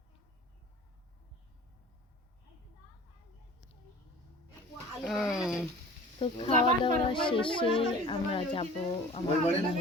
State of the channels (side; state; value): both; normal; correlation 0.43